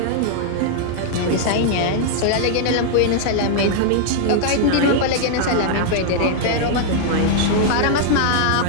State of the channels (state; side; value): different; both; correlation -0.01